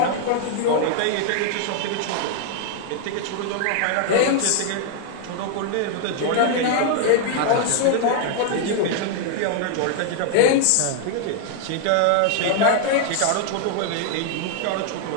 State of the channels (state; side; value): different; both; correlation 0.00